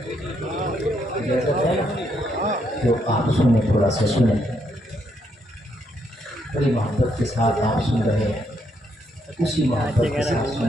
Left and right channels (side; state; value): both; normal; correlation 0.75